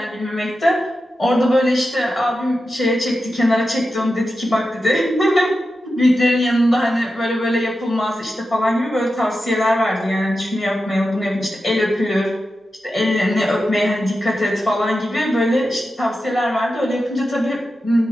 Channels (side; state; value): both; normal; correlation 0.91